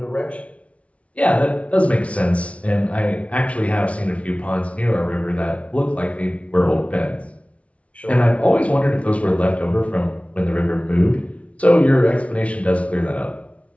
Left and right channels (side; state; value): right; late; 0.064 ms